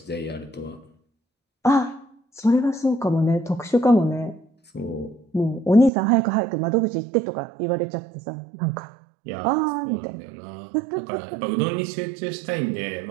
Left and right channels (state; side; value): drops out; left; at 5.9 s